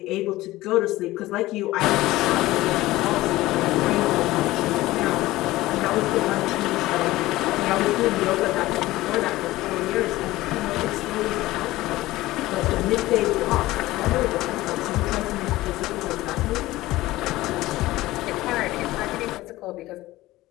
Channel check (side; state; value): right; quieter; 17.6 dB